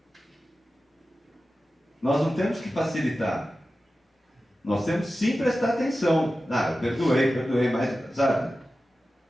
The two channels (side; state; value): both; normal; correlation 0.94